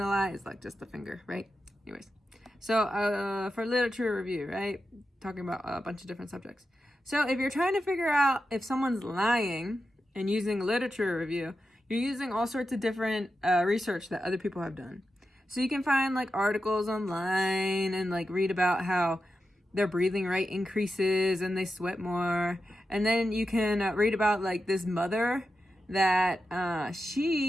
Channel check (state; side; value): normal; both; correlation 0.90